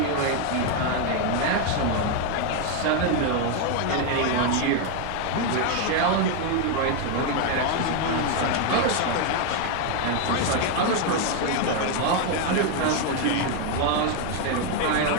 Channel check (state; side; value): different; both; correlation 0.01